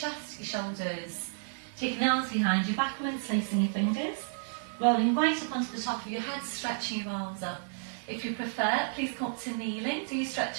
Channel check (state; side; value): silent; left; 57 dB below the other